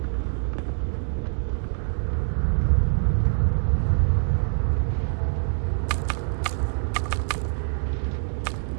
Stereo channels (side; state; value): left; silent; digital silence